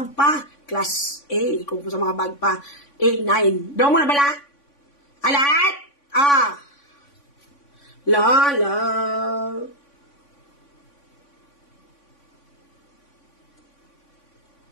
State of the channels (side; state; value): right; late; 3.5 ms